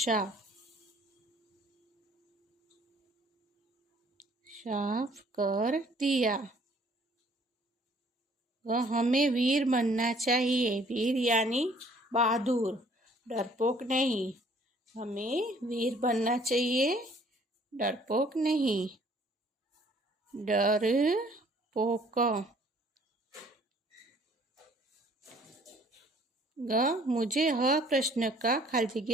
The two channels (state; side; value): normal; both; correlation 0.58